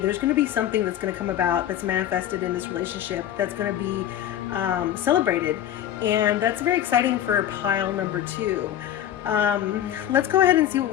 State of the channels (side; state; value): right; quieter; 11.3 dB